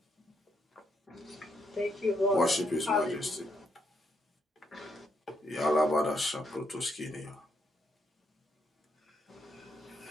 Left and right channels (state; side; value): normal; both; correlation 0.76